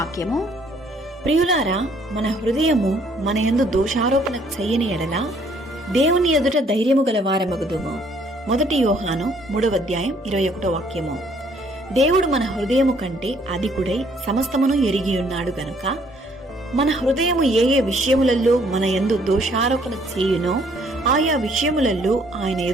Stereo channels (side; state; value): both; normal; correlation 0.63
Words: ప్రియులారా, మన హృదయము మన యందు దోషారోపణ చెయ్యని ఎడల దేవుని ఎదుట ధైర్యము గల వారమగుదుము. 1 యోహాను 3వ అధ్యాయం 21వ వాక్యము. దేవుడు మన హృదయము కంటే అధికుడై సమస్తమును ఎరిగి ఉన్నాడు గనుక మన హృదయము ఏ ఏ విషయములలో మన యందు దోషారోపణ చేయునో ఆయా విషయములలో ఆయన